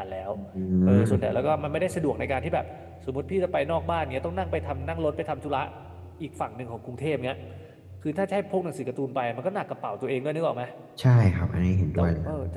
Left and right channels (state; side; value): identical; both; correlation 1.00